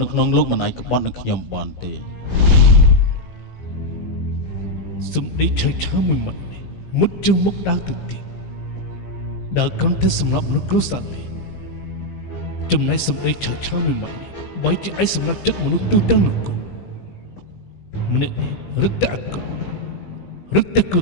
នៅក្នុងលោកមិនអាចក្បត់នឹងខ្ញុំបានទេសំដីឆៃមួយម៉ាត់នេះមុតជាងមុខដើរទៅទៀតដើរគ្រាន់តែសម្រាប់មនុស្សគ្រួសារនេះ ចំណែកសម្ដីឆើឆាមួយម៉ាត់នេះបើជាឯសម្រាប់ចិត្តមនុស្សទូទាំងនគរម្នាក់នេះរឹតតែអាក្រក់រឹតតែគ្រោះ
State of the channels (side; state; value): right; late; 17 ms